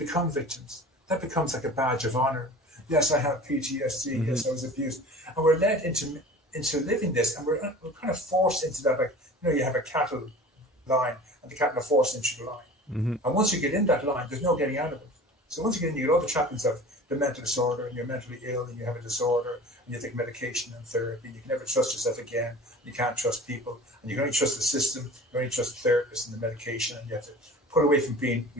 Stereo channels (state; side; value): normal; both; correlation 0.41